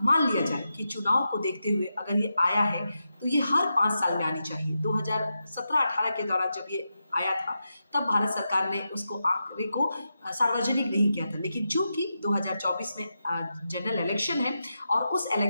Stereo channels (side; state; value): both; inverted; correlation -0.88